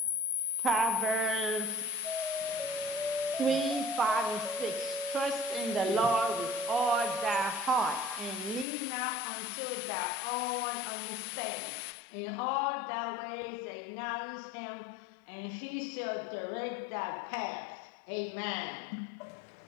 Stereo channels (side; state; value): right; drops out; at 8.7 s